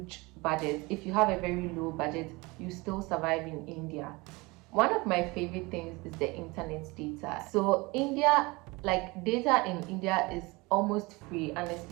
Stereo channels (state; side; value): quieter; left; 24.2 dB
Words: budget. If you have a very low budget, you still survive in India. One of my favorite things is the internet data. So India, like data in India is almost free,